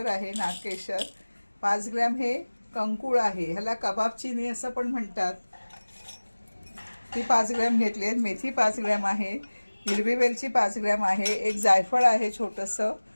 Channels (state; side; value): inverted; both; correlation -1.00